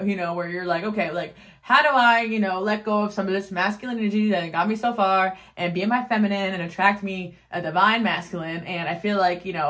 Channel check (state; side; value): identical; both; correlation 1.00